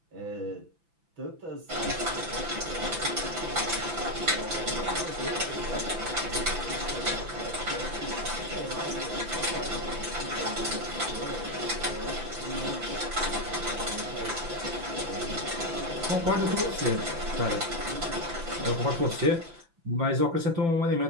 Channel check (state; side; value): late; left; 5.9 ms